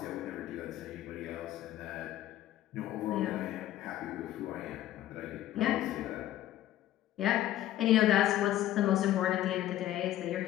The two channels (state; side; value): quieter; right; 13.3 dB